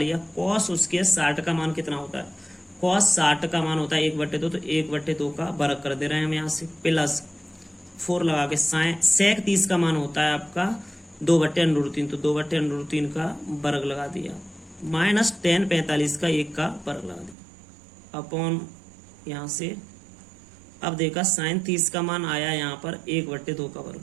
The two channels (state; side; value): drops out; left; at 17.4 s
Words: कॉस उसके 60 का मान कितना होता है, कॉस 60 का मान होता है 1/2, तो 1/2 का वर्ग कर दे रहे हैं हम यहाँ से, प्लस 4 लगा के सेक 30 का मान होता है आपका 2/√3, तो 2/√3 का वर्ग लगा दिया, माइनस tan 45 का 1 का वर्ग लगा दिया अपॉन यहाँ से। अब देखा sin 30 का मान आया यहाँ पर 1/2 का वर्ग,